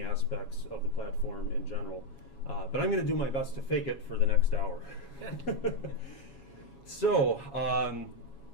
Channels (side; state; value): right; late; 7.3 ms